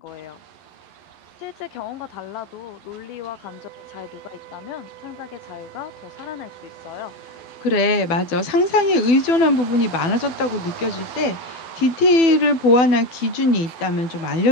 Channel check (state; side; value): late; right; 12 ms